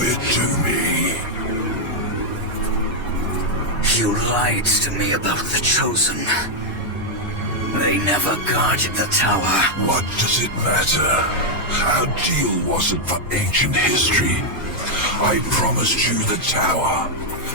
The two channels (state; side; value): normal; both; correlation -0.01